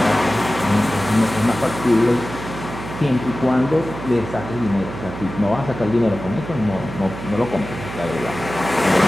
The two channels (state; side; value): noise; right; hum, 10 dB below the sound